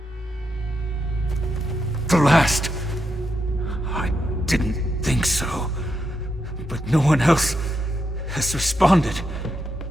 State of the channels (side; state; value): both; normal; correlation 0.83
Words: The last. I didn't think so. But no one else has responded.